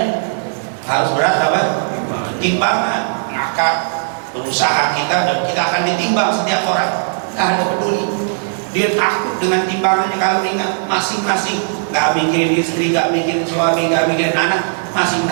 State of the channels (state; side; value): silent; left; 67 dB below the other